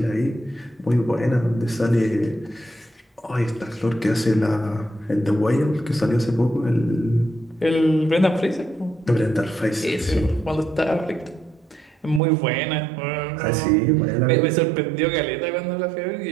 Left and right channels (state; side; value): drops out; left; at 12.2 s